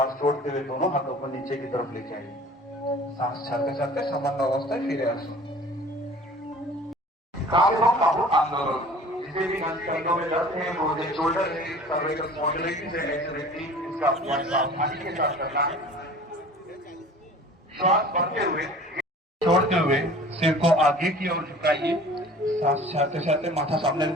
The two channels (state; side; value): normal; both; correlation 0.45